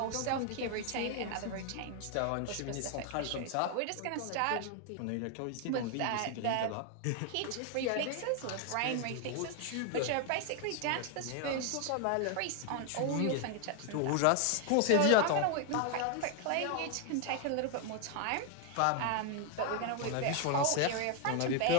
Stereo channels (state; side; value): different; both; correlation 0.00